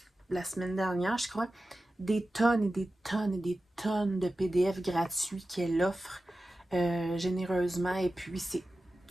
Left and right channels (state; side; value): normal; both; correlation 0.94